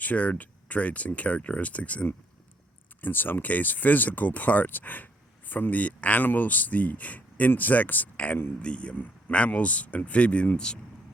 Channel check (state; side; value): normal; both; correlation 0.69